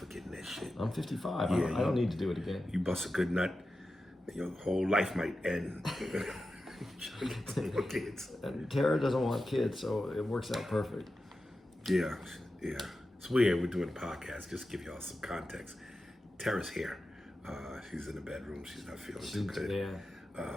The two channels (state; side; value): normal; both; correlation 0.92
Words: that shit. I'm 55. Yeah, I don't need to do it again. You bust a good nut, your whole life might end. Kids. And Tara doesn't want kids, so it works out perfect. Yeah. It's weird. We're doing a podcast. Just to give y'all some context. Tara's here. She's in the bedroom. She's not feeling too good. Yeah.